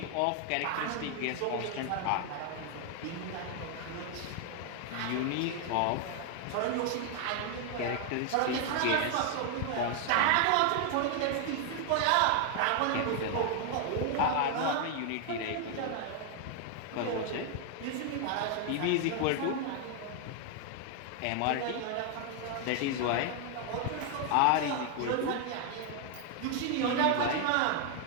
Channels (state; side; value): different; both; correlation 0.00